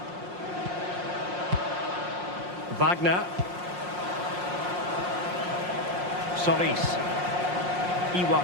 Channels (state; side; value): late; left; 5.6 ms